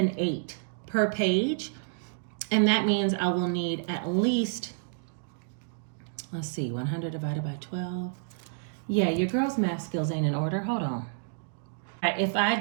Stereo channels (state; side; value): silent; left; digital silence